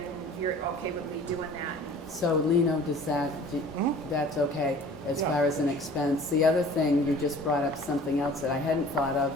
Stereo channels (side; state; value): both; normal; correlation 0.47